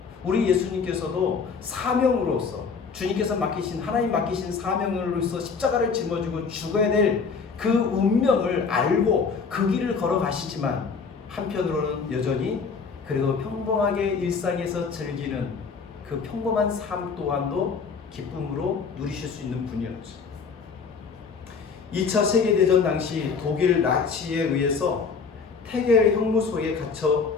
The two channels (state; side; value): quieter; right; 5.3 dB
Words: 우리 예수님께서도 사명으로서 주님께서 맡기신, 하나님 맡기신 사명으로서 십자가를 짊어지고 죽어야 될 그 운명을 알고 그 길을 걸어가시지만 한편으로는 여전히 그래도 평범하게 일상에서 즐기는 그 평범한 삶 또한도 기쁨으로 누리실 수 있는 분이었죠. 2차 세계대전 당시 독일 나치에 의해서 태겔 형무소에 갇혀